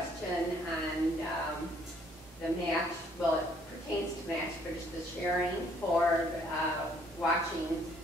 on the match. Well, it pertains to match, but it's the sharing for watching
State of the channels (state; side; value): normal; both; correlation 0.64